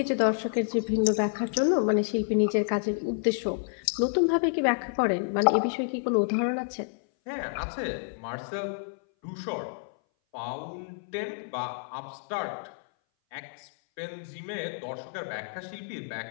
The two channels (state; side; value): silent; right; 58 dB below the other